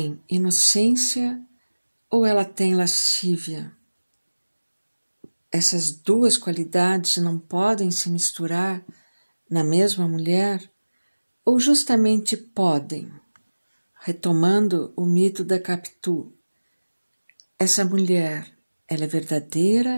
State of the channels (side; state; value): both; inverted; correlation -1.00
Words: inocência ou ela tem lascívia? Essas duas qualidades não podem se misturar na mesma mulher ou justamente podem? Retomando o mito da Capitu, essa mulher, ela é